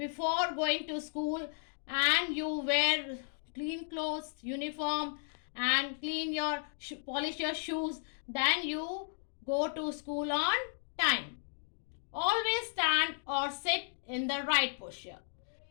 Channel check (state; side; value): silent; right; digital silence